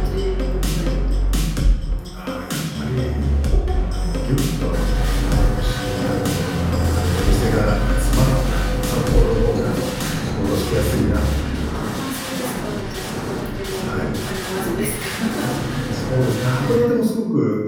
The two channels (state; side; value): identical; both; correlation 1.00